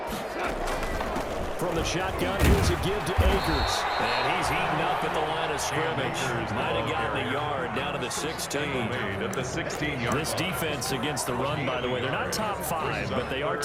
From the shotgun, here's a give to Akers. And he's eaten up at the line of scrimmage. Might have gotten a yard down to the 16. At the 16-yard This defense against the run, by the way, they're not top 5, but they are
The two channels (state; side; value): identical; both; correlation 1.00